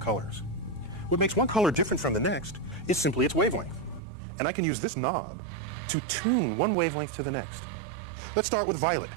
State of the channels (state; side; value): drops out; left; at 4.0 s